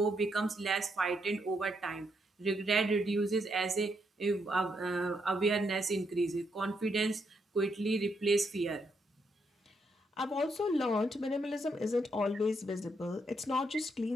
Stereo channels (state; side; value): normal; both; correlation 0.78